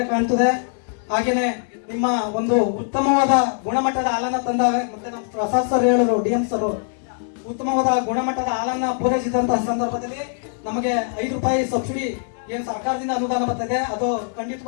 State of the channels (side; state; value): right; silent; digital silence